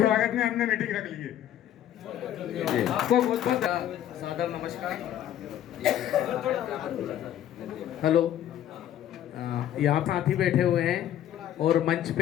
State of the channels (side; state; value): right; quieter; 11.5 dB